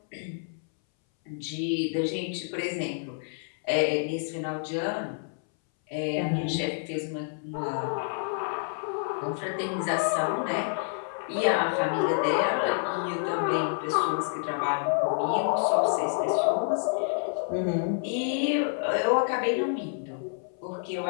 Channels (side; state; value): right; silent; 59 dB below the other